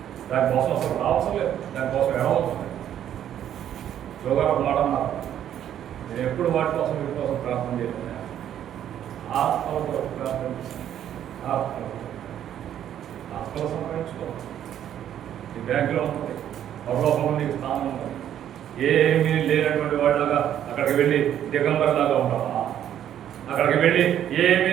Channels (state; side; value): quieter; left; 10.5 dB